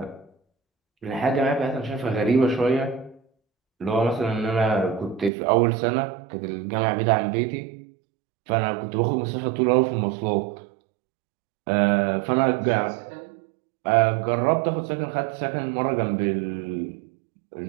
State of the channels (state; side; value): drops out; left; at 5.3 s